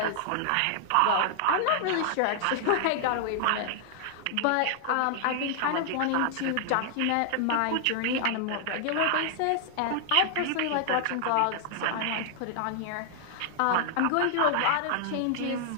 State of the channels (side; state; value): both; different; correlation -0.01